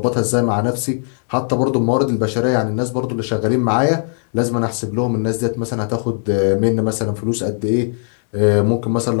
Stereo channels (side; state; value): right; silent; digital silence